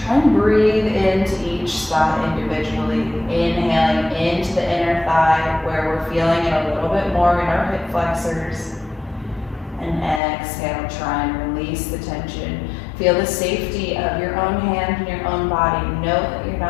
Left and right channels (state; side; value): drops out; right; at 10.2 s